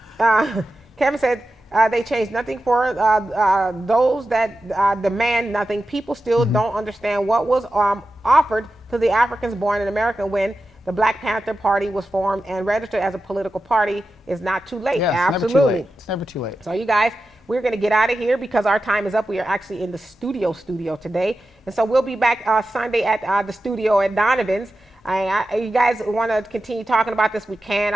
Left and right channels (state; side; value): normal; both; correlation 0.92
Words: Kevin said, they changed nothing for those that demand nothing. People still don't understand what was offered to the Africans born in America when the Black Panther Party was formed and registered as a political party. Is not too late. Yeah, Absolutely. It's never too late. So you guys, we're going to get out of here because our time is up. We are actually in the studio today. And so we'll be back Sunday at the studio at Donovan's. You guys want to continue talking about this, we can.